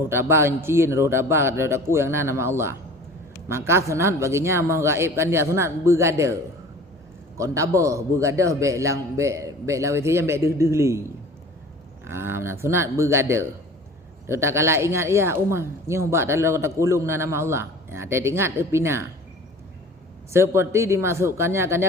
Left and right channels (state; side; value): normal; both; correlation 0.43